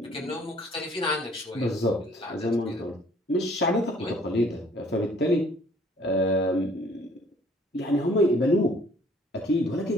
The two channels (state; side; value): normal; both; correlation 0.58